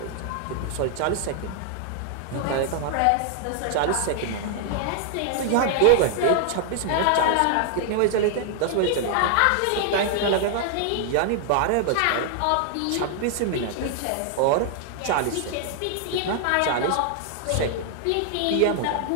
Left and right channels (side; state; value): both; different; correlation 0.00